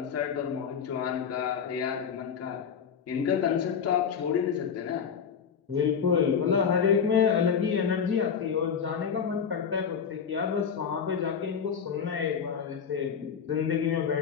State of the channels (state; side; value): quieter; right; 7.0 dB